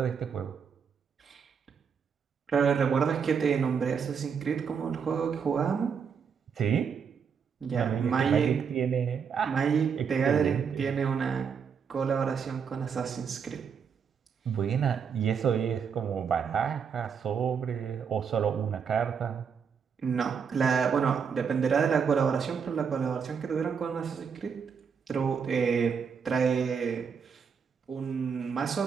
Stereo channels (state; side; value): quieter; left; 6.6 dB